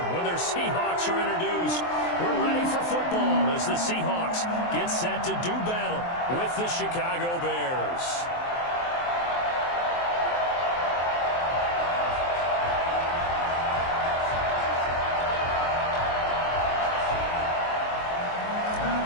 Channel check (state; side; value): late; right; 23 ms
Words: when their Seahawks are introduced. We're ready for football as the Seahawks get set to do battle with the Chicago Bears.